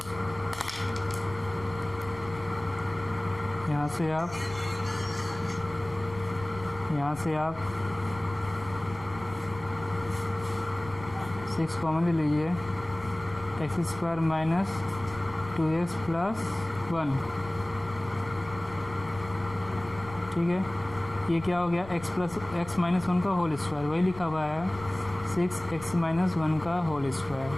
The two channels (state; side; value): noise; left; rumble, 16 dB below the sound